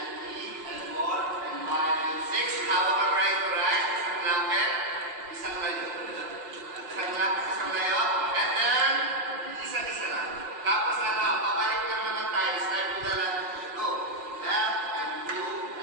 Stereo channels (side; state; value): left; late; 6.6 ms